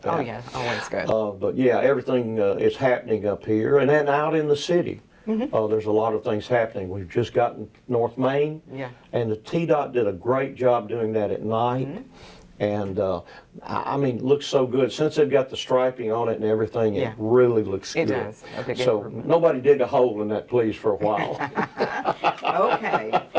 that. Oh yeah, always good. But yeah, everything is happening up here, and then out in the city. There's a lot of things happening. We've just gotten North Main, Yeah. and the TDOT did a great job doing that at night. And I mean, it looks so good. Since they've got the striping on it and everything, Yeah. it really looks It good. does. A big So improvement. nobody dig a hole in that, please, for a while. Okay.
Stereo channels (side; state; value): both; identical; correlation 1.00